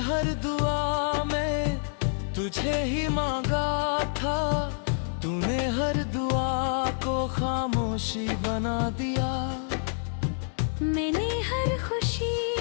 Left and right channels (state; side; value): silent; right; digital silence